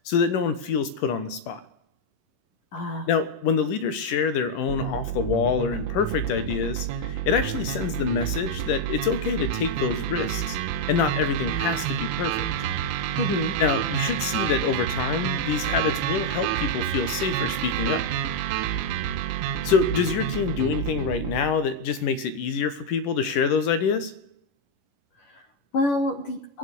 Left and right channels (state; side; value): late; right; 11 ms